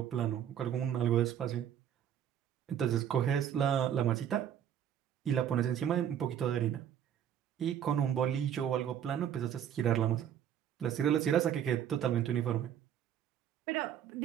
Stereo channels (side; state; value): left; quieter; 9.6 dB